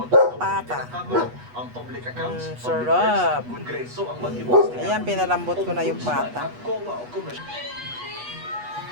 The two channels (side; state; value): left; late; 8.2 ms